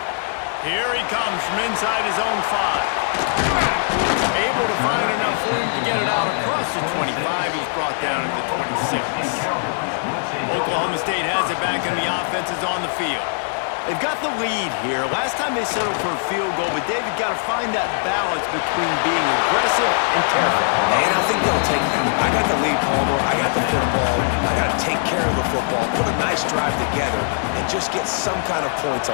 Here he comes from inside his own 5. Able to find enough room to get it out across the 25. He's brought down at the 26. Oklahoma State has it back, and the offense is on the field. They've got the lead here. Last time they settled for a field goal, but David got to find that balance between being aggressive and careful. And I think they'll take that. I got the lead, Palmer. I got the football. I got to take care of the football, put a nice drive together, and just get some kind of points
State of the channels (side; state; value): right; silent; 60 dB below the other